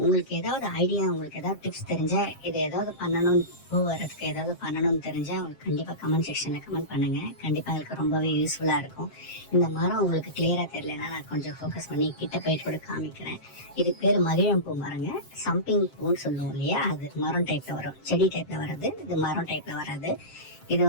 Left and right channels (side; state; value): right; late; 7.5 ms